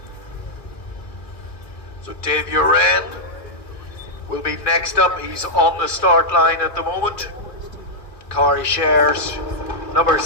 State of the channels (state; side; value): late; right; 2.4 ms